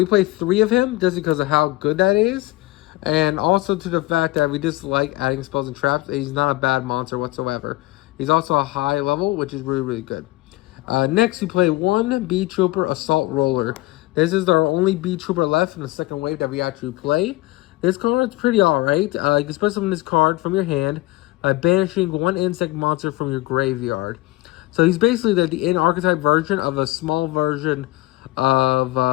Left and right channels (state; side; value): quieter; right; 19.7 dB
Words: play 3 of him just because of how good that is, and also to the fact that we just like adding spells and traps. He's not a bad monster whatsoever. He's also a high level, which is really, really good. Next, we play 1 Beetrouper Assault Roller. This is our only Beetrouper left in the second wave that we actually play. This card is pretty alright. You can special summon this card from your hand by banishing 1 insect monster from your graveyard. So he's basically the in-archetype version of a small version of